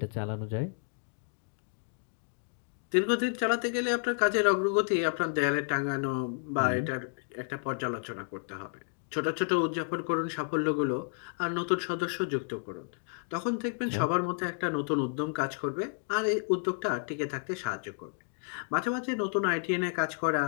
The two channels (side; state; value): right; silent; 57 dB below the other